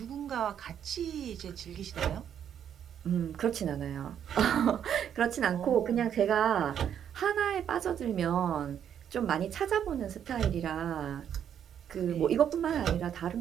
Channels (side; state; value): left; quieter; 9.1 dB